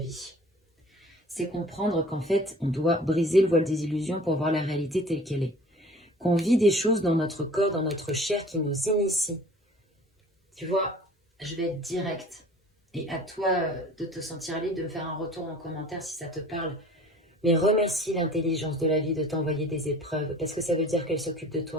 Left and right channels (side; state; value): both; normal; correlation 0.47